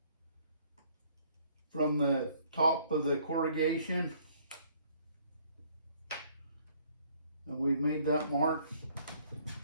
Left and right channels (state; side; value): inverted; both; correlation -0.62